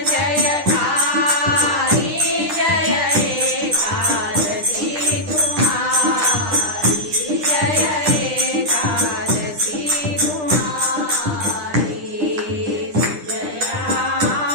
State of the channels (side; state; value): left; late; 9.9 ms